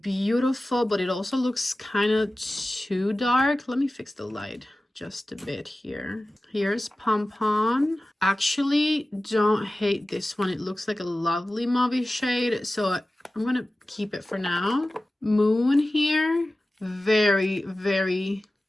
but it also looks kind of too dark. Let me fix the light just a bit here. Here's Pom Pom. Actually, don't hate this one. It looks like a lovely mauve shade, so I'm gonna keep it for now. Moon here, very, very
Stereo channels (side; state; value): both; normal; correlation 0.96